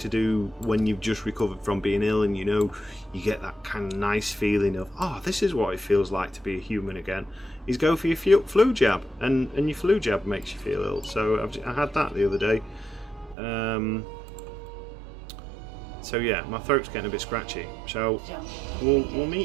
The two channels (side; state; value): left; drops out; at 13.4 s